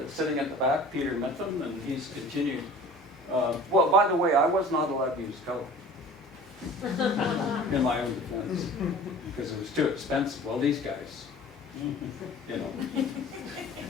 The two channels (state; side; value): normal; both; correlation 0.44